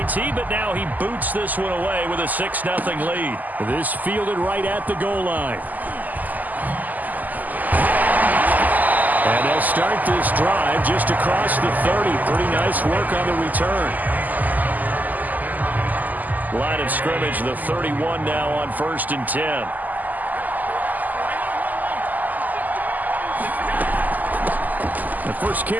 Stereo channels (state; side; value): late; left; 0.082 ms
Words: but now he boots this one away with a 6-0 lead. This fielded right at the goal line. And they'll start this drive just across the 30. Pretty nice work on the return. Line of scrimmage, the 31 now on 1st and 10. The first